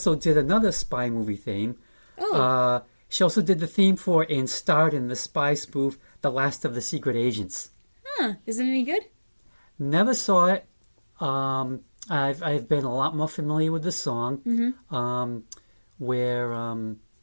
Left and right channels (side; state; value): both; inverted; correlation -1.00